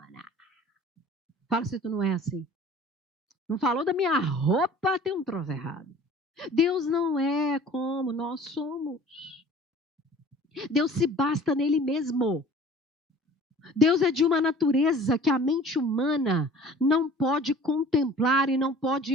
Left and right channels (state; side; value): normal; both; correlation 0.46